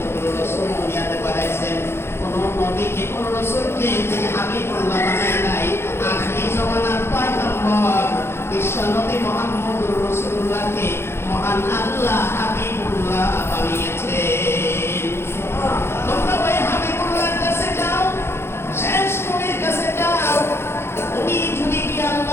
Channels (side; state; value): right; late; 0.12 ms